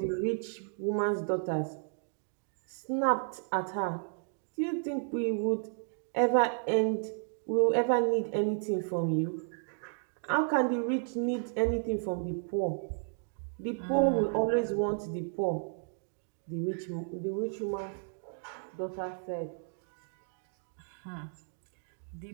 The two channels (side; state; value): left; silent; 56 dB below the other